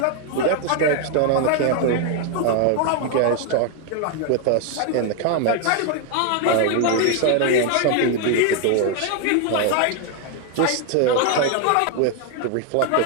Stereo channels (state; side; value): different; both; correlation 0.01